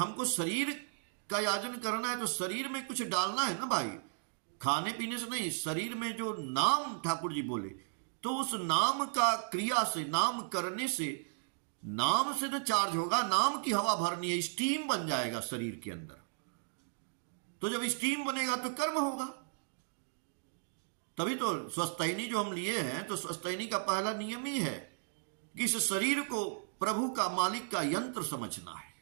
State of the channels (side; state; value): left; silent; digital silence